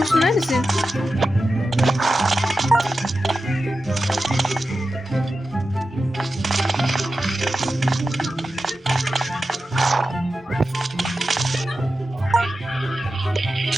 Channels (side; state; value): both; normal; correlation 0.92